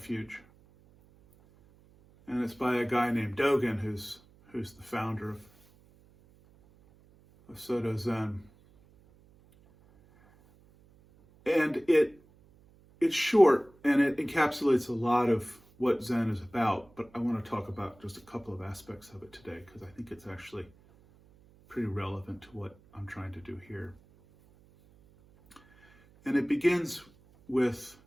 and it's by a guy named Dogen, who's the founder of Soto Zen. And it's short and it encapsulates a lot of what Zen is about, but I want to talk about just a couple of aspects of it today because I think it's actually pretty relevant to what I'm trying to do here. And it begins with,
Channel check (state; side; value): noise; right; hum, 28 dB below the sound